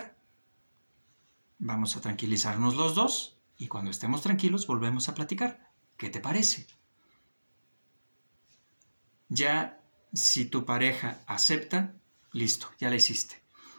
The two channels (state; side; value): inverted; both; correlation -1.00